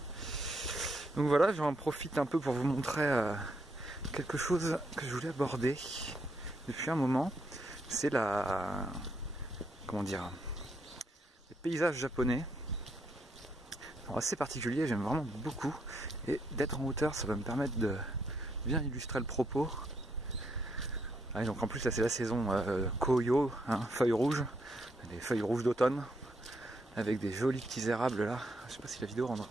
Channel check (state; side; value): normal; both; correlation 0.76